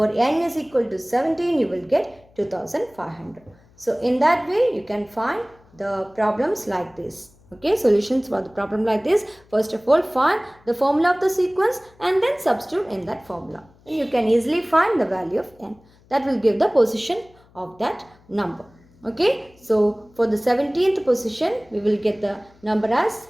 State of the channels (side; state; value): left; noise; hum, 29 dB below the sound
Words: n is equal to 17, you will get 2500. So in that way, you can find the problems like this. Okay, solutions for the problem like this. First of all, find the formula of the sequence and then substitute in that formula. And you can easily find the value of n. That will give the position of that number. Okay, so for the 17th position, we will get the number as